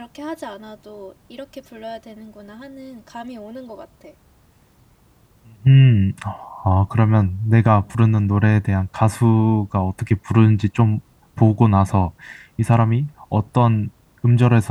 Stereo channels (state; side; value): identical; both; correlation 1.00